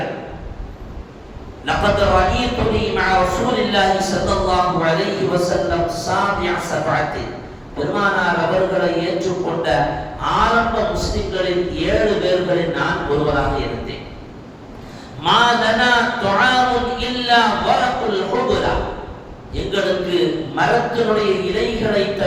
لقد رأيتني مع رسول الله صلى الله عليه وسلم سابع سبعة. பெருமானார் அவர்களை ஏற்றுக்கொண்ட ஆரம்ப முஸ்லிம்களில் 7 பேர்களில் நான் ஒருவராக இருந்தேன். மா லனா துஆமுன் இல்லா வரகுல் ஹுபுரா. எங்களுக்கு மரத்தினுடைய இலைகளை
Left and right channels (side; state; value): both; identical; correlation 1.00